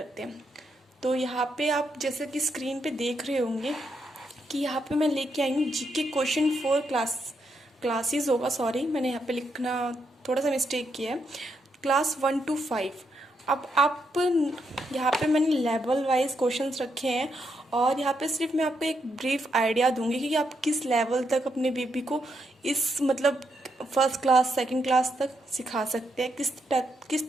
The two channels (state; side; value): normal; both; correlation 0.80